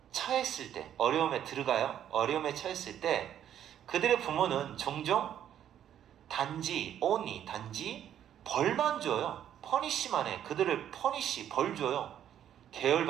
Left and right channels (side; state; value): left; quieter; 10.3 dB